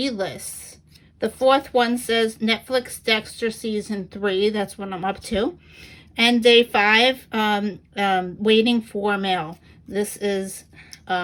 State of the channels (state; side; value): identical; both; correlation 1.00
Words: lists. The fourth one says, Netflix Dexter Season 3. That's what I'm up to. And day 5, waiting for mail. This is